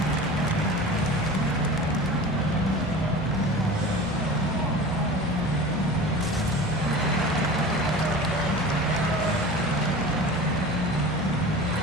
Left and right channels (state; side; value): normal; both; correlation 0.36